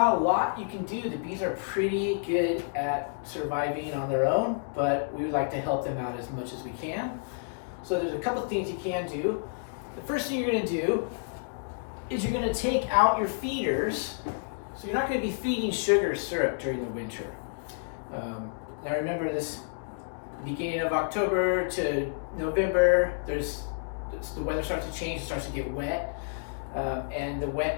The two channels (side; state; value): right; silent; digital silence